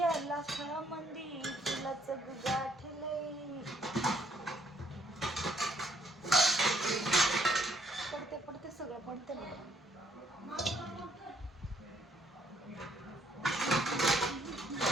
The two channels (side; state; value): both; normal; correlation 0.67